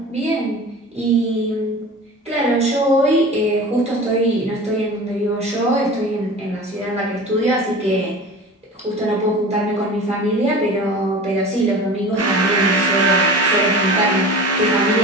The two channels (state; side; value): normal; both; correlation 0.37